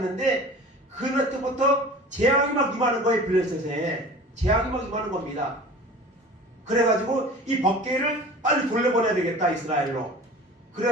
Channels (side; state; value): both; normal; correlation 0.40